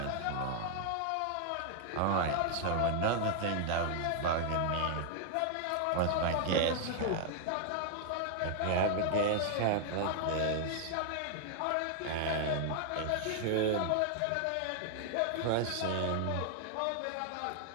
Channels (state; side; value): different; both; correlation 0.00